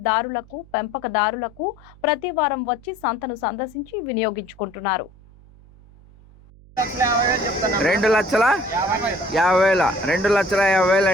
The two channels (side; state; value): right; noise; hum, 24 dB below the sound